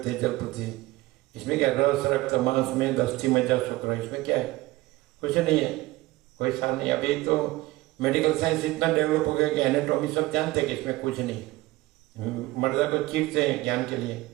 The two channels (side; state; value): left; quieter; 19.1 dB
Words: जल पृथ्वी। इसमें क्या रस रक्त मांस में दस्ती मज्जा शुक्र, इसमें क्या है, कुछ नहीं है, कोई सार नहीं। अभी तो मेडिकल साइंस इतना डेवलप हो गया कि एनाटॉमी सब जानते हैं कि इसमें कुछ नहीं। मर्दा को चीरते हैं ज्ञान के लिए